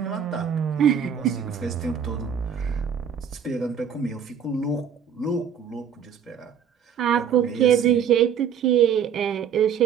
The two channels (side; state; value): left; quieter; 7.8 dB